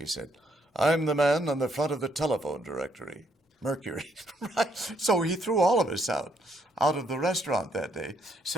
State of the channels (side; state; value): both; normal; correlation 0.72